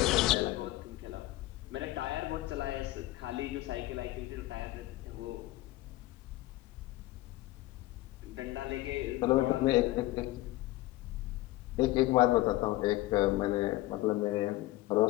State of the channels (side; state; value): right; quieter; 17.7 dB